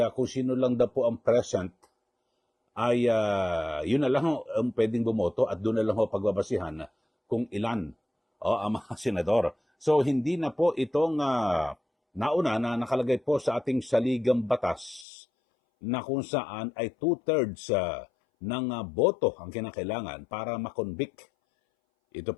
kung sino lang daw po ang present ay yun na lang ho ang pwedeng bumoto at doon na lang ho pagbabasihan kung ilan ang mga senador. So hindi na po itong nauna na nakalagay po sa ating saligang batas na kung saan ay 2/3 ng boto ang kinakailangan para makonvict. Ito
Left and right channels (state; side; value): drops out; right; at 15.1 s